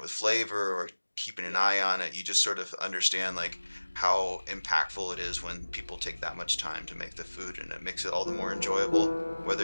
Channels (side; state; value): both; inverted; correlation -1.00